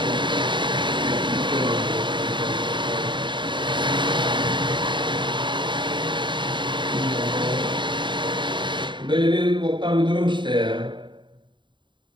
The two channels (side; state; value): left; late; 0.23 ms